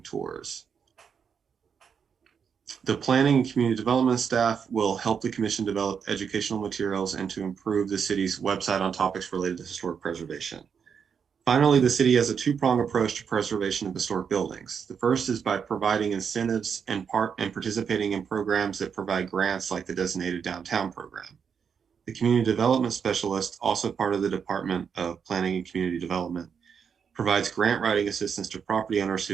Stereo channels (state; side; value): quieter; left; 6.8 dB